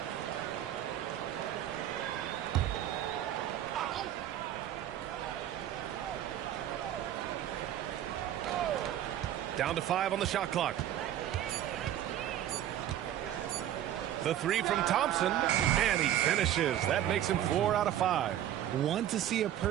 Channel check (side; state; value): left; quieter; 11.5 dB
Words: Down to 5 on the shot clock. The 3 from Thompson, and he finishes. That makes him 4 out of 5. Want to see a